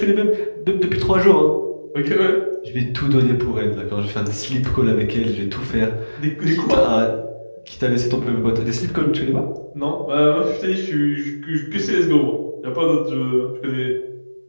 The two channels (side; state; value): both; inverted; correlation -1.00